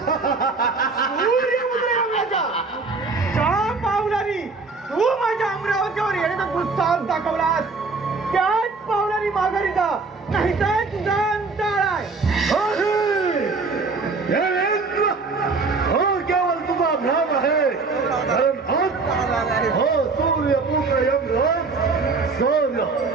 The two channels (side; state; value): left; quieter; 4.1 dB